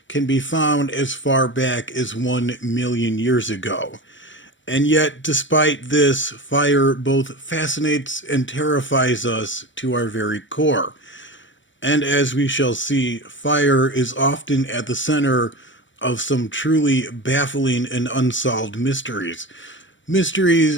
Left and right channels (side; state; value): right; late; 0.55 ms